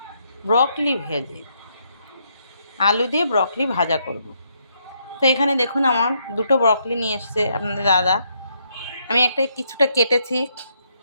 ব্রকলি ভেজে, আলু দিয়ে ব্রকলি ভাজা করব। তো এখানে দেখুন আমার দুটো ব্রকলি নিয়ে এসছে আপনাদের দাদা। আমি কিছুটা কেটেছি,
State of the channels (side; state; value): both; inverted; correlation -0.75